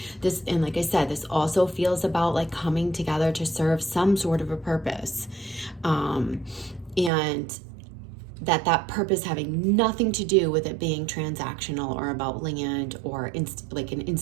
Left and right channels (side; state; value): left; drops out; at 7.1 s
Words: This, and like I said, this also feels about like coming together to serve some sort of a purpose, and that purpose having nothing to do with it being transactional or about land or like an